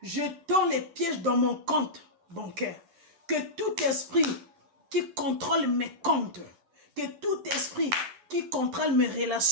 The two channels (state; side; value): late; left; 10 ms